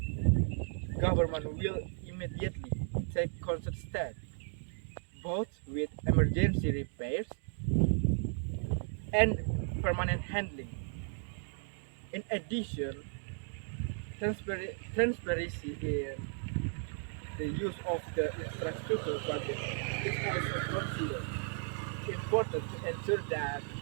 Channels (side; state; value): left; silent; 54 dB below the other